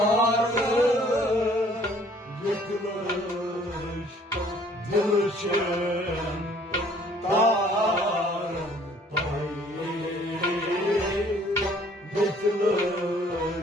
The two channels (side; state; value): both; normal; correlation 0.57